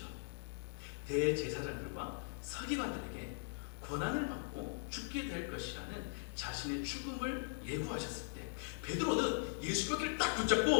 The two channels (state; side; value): silent; right; digital silence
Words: 대제사장들과 서기관들에게 고난을 받고 죽게 될 것이라는 자신의 죽음을 예고하셨을 때 베드로는 예수님 어깨를 딱